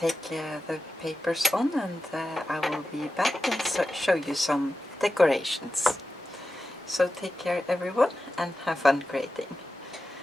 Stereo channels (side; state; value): both; normal; correlation 0.92